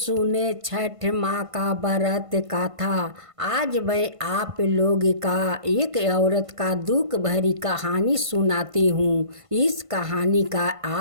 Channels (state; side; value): late; left; 1.5 ms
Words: छठ माँ का व्रत कथा। आज मैं आप लोग का एक औरत का दुख भरी कहानी सुनाती हूँ। इस कहानी का